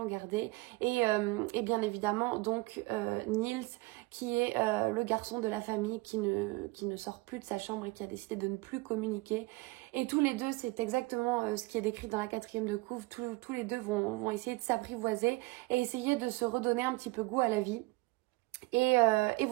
garder. Et bien évidemment, donc, Niels, qui est le garçon de la famille qui ne sort plus de sa chambre et qui a décidé de ne plus communiquer. Et tous les deux, c'est exactement ce qui est décrit dans la 4e de couve. Tous les deux vont essayer de s'apprivoiser et essayer de se redonner un petit peu goût à la vie. Et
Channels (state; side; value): quieter; left; 23.2 dB